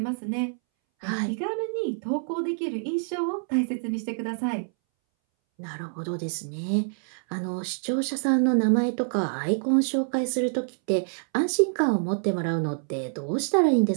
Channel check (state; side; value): silent; left; 61 dB below the other